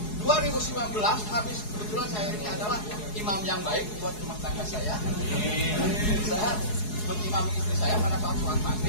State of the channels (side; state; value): right; late; 4.7 ms